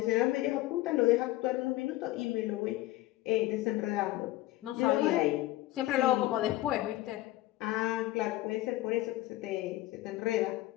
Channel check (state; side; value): quieter; right; 16.9 dB